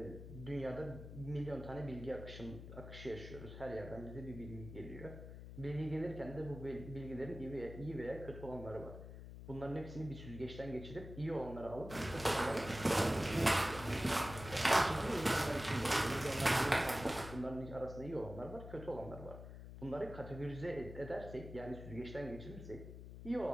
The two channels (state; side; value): noise; left; hum, 11 dB below the sound